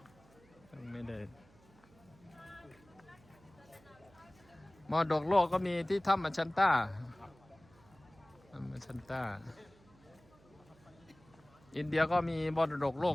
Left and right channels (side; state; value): right; noise; hum, 27 dB below the sound